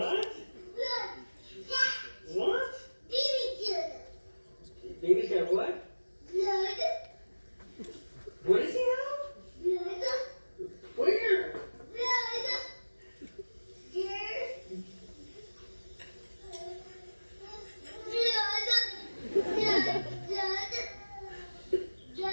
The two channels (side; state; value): both; inverted; correlation -1.00